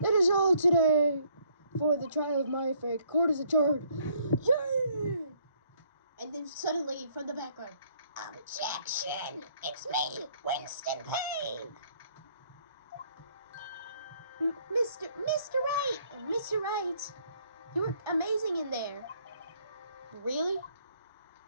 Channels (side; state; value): both; inverted; correlation -0.65